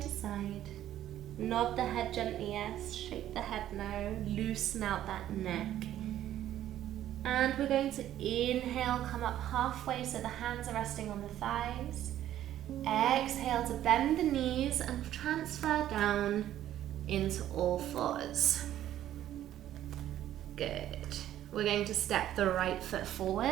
to side. Nod the head gently, yes. Shake the head no. Loosen out that neck. And we're going to inhale, come up halfway so the hands are resting on the thighs. Exhale to bend the knees and transfer down into all fours. Good. We're going to step the right foot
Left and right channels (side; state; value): left; quieter; 12.2 dB